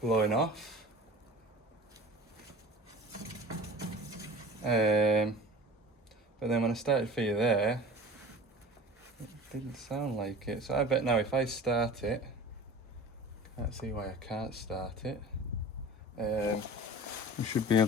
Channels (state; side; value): normal; both; correlation 0.39